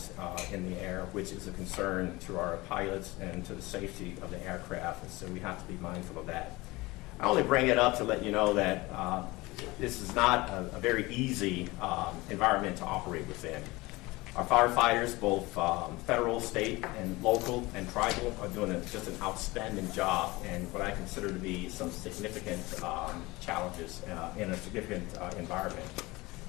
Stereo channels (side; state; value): right; quieter; 21.7 dB